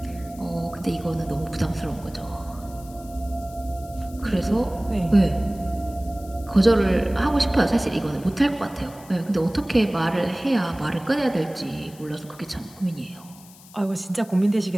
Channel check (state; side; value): noise; left; hiss, 22 dB below the sound